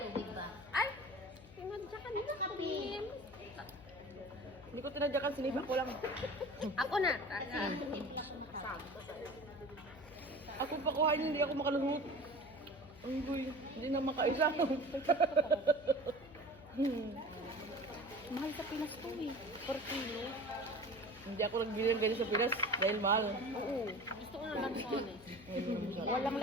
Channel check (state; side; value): noise; left; hum, 19 dB below the sound